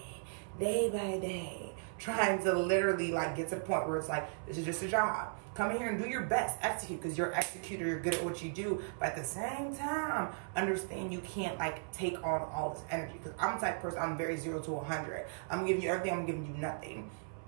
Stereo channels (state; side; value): silent; left; 53 dB below the other